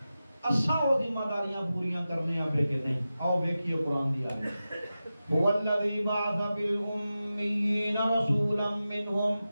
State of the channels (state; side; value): inverted; both; correlation -0.93